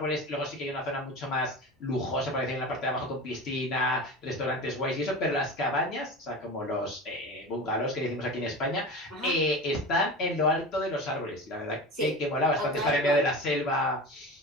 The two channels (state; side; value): normal; both; correlation 0.30